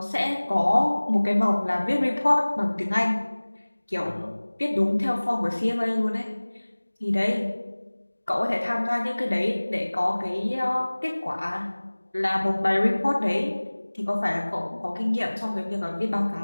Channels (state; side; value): inverted; both; correlation -1.00